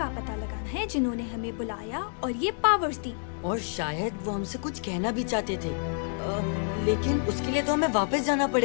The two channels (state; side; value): silent; right; 59 dB below the other